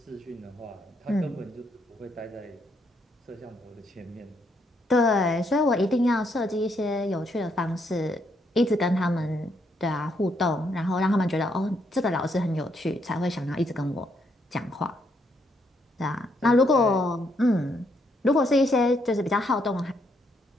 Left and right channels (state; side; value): normal; both; correlation 0.74